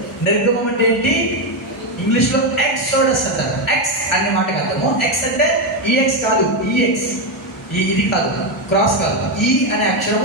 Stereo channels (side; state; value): both; normal; correlation 0.07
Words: నిర్గమం అంటే ఏంటి? ఇంగ్లీష్లో ఎక్సోడస్ అంటారు. ఎక్స్ అనే మాటకి అర్థము. ఎక్స్ అంటే ఈఎక్స్ కాదు, ఈఎక్స్. ఇది కాదు, క్రాస్ కాదు. ఈ అనే